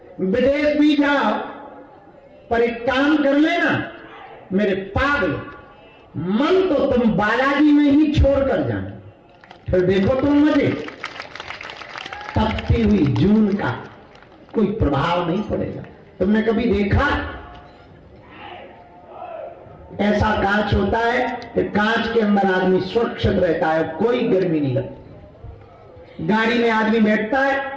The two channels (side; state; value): both; identical; correlation 1.00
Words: विदेश भी जाओ, पर एक काम कर लेना मेरे पागल, मन तो तुम बालाजी में ही छोड़ कर जाना, फिर देखो तुम मजे। तपती हुई जून का कोई प्रभाव नहीं पड़ेगा। तुमने कभी देखा ऐसा कांच होता है कि कांच के अंदर आदमी सुरक्षित रहता है, कोई गर्मी नहीं लगती। गाड़ी में आदमी बैठता